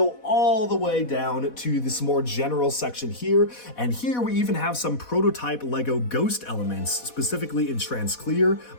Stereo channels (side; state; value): right; late; 4.1 ms